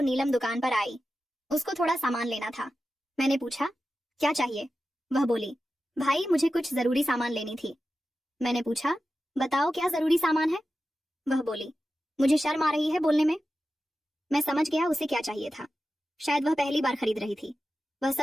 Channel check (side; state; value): both; normal; correlation 0.92